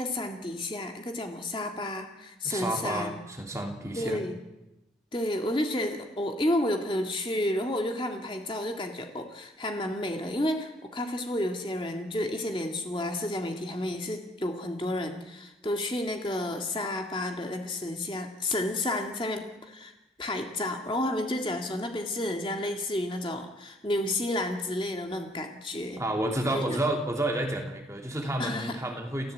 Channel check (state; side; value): normal; both; correlation 0.62